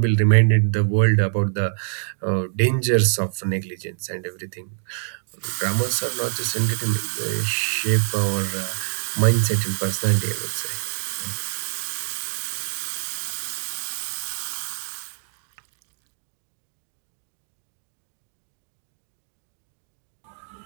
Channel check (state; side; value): silent; left; digital silence